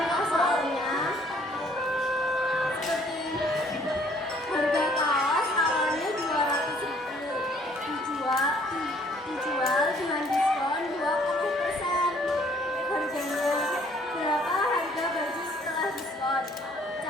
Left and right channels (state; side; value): normal; both; correlation 0.60